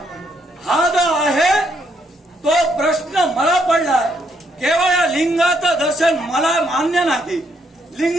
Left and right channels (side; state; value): both; normal; correlation 0.73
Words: हा जो आहे तो प्रश्न मला पडलाय. केवळ या लिंगाचं दर्शन मला मान्य नाही.